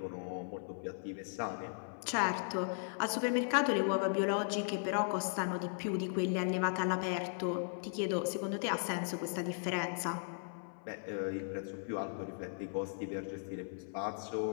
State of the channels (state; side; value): silent; right; 53 dB below the other